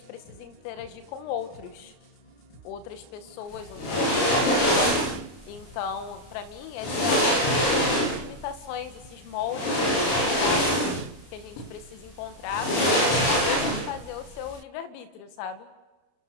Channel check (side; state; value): right; late; 33 ms